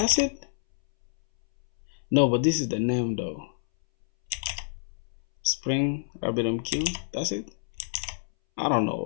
it. No, but this is the name though. Spring RabbitMQ. That's it. I don't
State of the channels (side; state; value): right; silent; 60 dB below the other